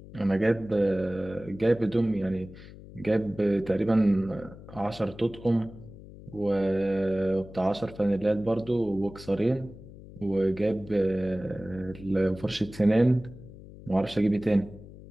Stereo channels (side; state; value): left; noise; hum, 17 dB below the sound